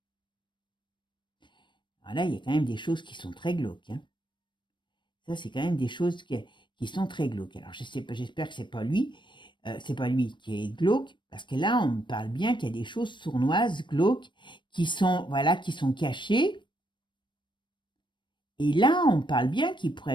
Alors là, il y a quand même des choses qui sont très glauques, hein. Ça, c'est quand même des choses qui sont très glauques. Alors, je sais pas, j'espère que c'est pas lui qui est glauque, parce que là, on me parle bien qu'il y a des choses sournoises, glauques, qui sont, voilà, qui sont cachées. Et là, on parle bien qu'il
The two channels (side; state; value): right; late; 0.22 ms